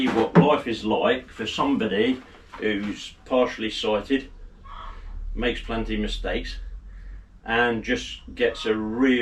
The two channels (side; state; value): both; identical; correlation 1.00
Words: what life is like for somebody who's partially sighted, makes plenty of mistakes, and just gets a